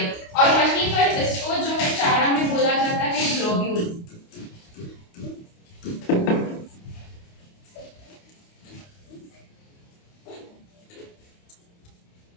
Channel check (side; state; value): right; late; 29 ms